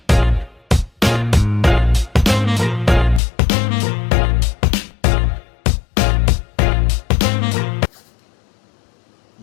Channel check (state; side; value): drops out; right; at 3.2 s